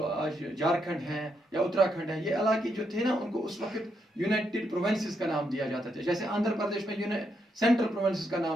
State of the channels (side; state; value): both; normal; correlation 0.79